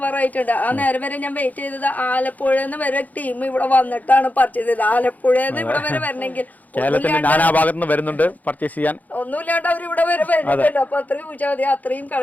ആ നേരം വരെ ഞാൻ വെയിറ്റ് ചെയ്തത് ആലപ്പുഴന്ന് വരെ ടീം ഇവിടെ വന്നിട്ടാണ് പർച്ചേസ് ചെയ്തത്. ആലപ്പുഴന്ന് ഇവിടെ വരെ വരണമെങ്കിൽ കേരളത്തിന്റെ നാനാഭാഗത്ത് നിന്ന് വരുന്നുണ്ട് പർച്ചേസ് ചെയ്യാൻ. ഒന്നുമില്ലാണ്ട് അവർ ഇവിടെ വരെ വരുന്നുണ്ട്. അപ്പൊ അത്രയും ചോദിച്ചാൽ മതി, അത്രയും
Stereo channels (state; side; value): late; right; 0.080 ms